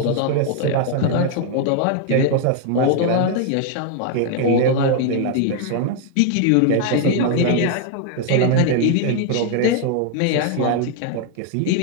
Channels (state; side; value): different; both; correlation 0.00